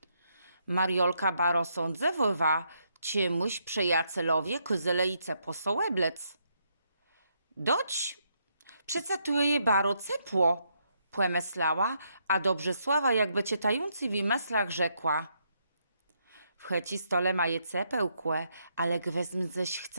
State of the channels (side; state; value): both; inverted; correlation -0.76